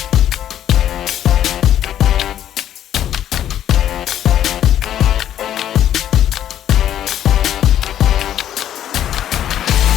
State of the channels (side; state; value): right; quieter; 11.0 dB